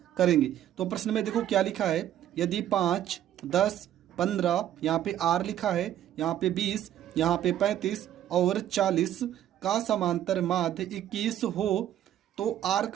करेंगे। तो प्रश्न में देखो क्या लिखा है। यदि 5, 10, 15, यहाँ पे आर लिखा है, यहाँ पे 20, यहाँ पे 35 और 40 का समांतर माध्य 21 हो तो आर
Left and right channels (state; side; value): quieter; left; 11.5 dB